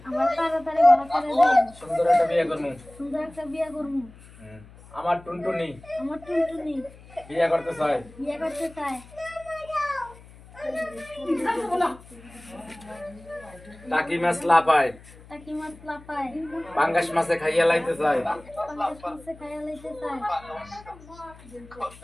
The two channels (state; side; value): noise; left; hum, 21 dB below the sound